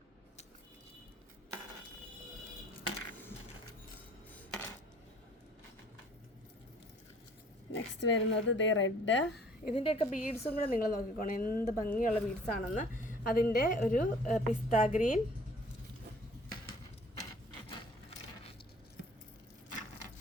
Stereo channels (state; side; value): normal; both; correlation 0.54